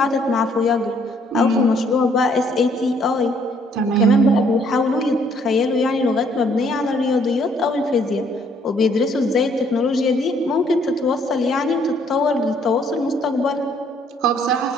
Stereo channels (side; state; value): both; normal; correlation 0.65